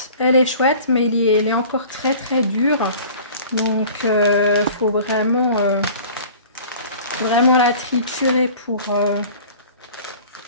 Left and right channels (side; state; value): both; inverted; correlation -0.45